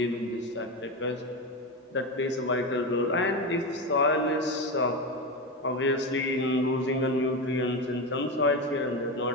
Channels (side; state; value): both; normal; correlation 0.17